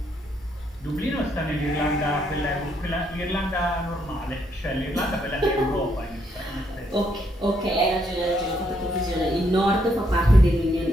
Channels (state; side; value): normal; both; correlation 0.74